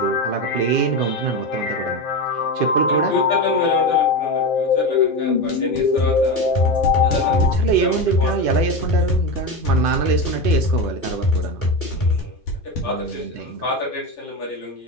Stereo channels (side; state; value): right; late; 2.5 ms